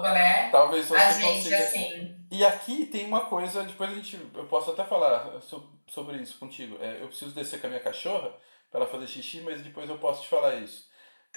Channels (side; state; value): both; inverted; correlation -1.00